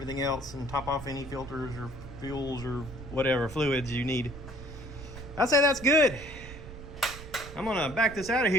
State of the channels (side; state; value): right; noise; rumble, 13 dB below the sound